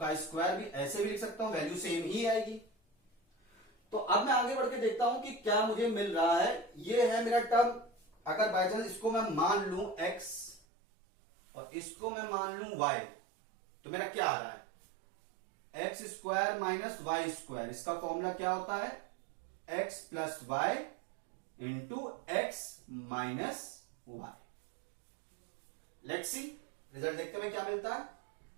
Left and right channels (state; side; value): drops out; left; at 10.6 s